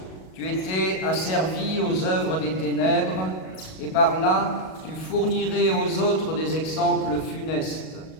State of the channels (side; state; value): right; late; 37 ms